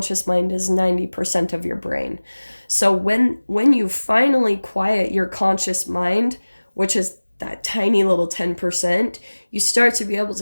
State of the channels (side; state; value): both; inverted; correlation -1.00